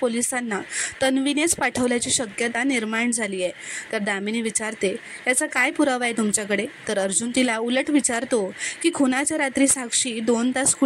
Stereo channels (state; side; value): identical; both; correlation 1.00